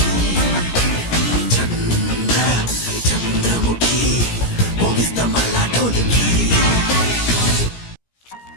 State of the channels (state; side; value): late; right; 17 ms